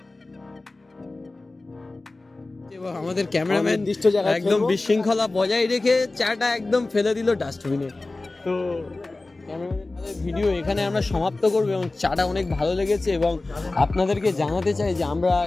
এবং আমাদের ক্যামেরাম্যান নির্দিষ্ট জায়গায় একদম ফেলবো। বিশৃঙ্খলা বজায় রেখে চাটা একদম ফেলে দিল ডাস্টবিনে। তো ক্যামেরাম্যানের ভিডিও এখানে আমরা সমাপ্ত করবো এবং চাটা অনেক ভালো লেগেছে এবং আপনাদেরকে জানাতে চাই যে আমরা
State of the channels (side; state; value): right; quieter; 3.1 dB